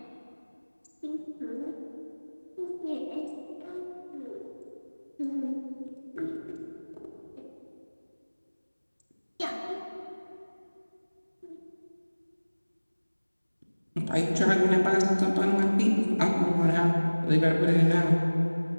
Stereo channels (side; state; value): both; inverted; correlation -1.00